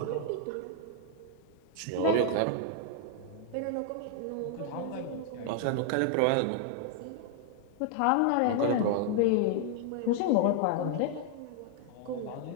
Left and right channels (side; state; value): both; different; correlation 0.00